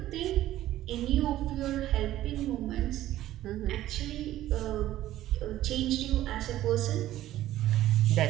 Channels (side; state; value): left; quieter; 14.1 dB